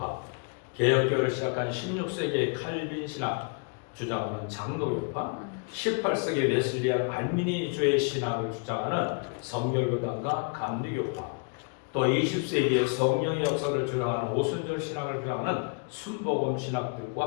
개혁교회를 시작한 16세기의 칼빈 신학 주장하는 장로교파, 18세기 웨슬리안 알미니주의 신학을 주장하는 성결교단과 감리교파, 또 20세기의 성령의 역사를 주장하는 오순절 신학을 주장하는 순복음 신학들과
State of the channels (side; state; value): right; quieter; 37.2 dB